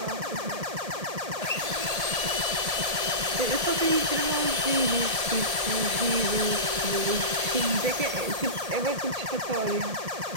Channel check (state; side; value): late; left; 1.8 ms